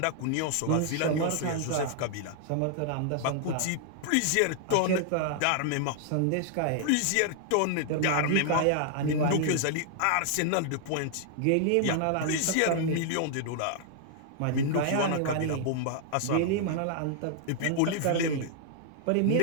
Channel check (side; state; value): both; different; correlation -0.01